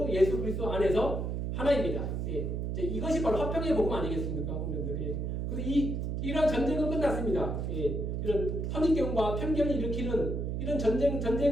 예수 그리스도 안에서 하나입니다. 이것이 바로 화평의 복음 아니겠습니까? 그래서 이런 전쟁은 끝났습니다. 이런 선입견과 편견을 일으키는 이런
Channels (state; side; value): noise; right; hum, 1 dB below the sound